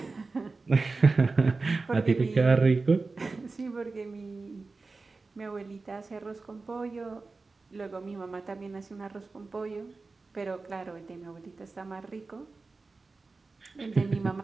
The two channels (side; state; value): left; quieter; 3.9 dB